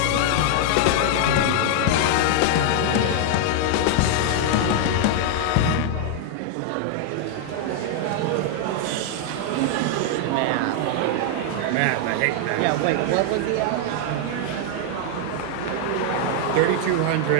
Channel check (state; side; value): different; both; correlation 0.00